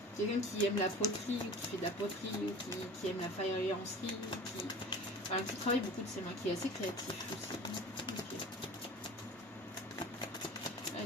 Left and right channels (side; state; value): both; normal; correlation 0.39